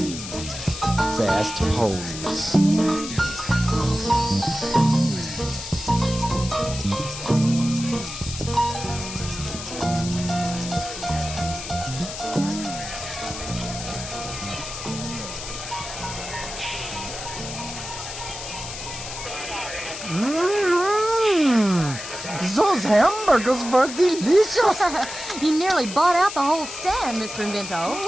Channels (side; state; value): left; noise; hiss, 9 dB below the sound